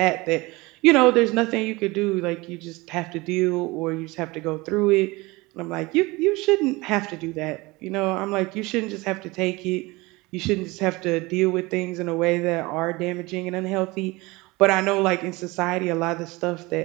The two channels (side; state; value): left; quieter; 22.8 dB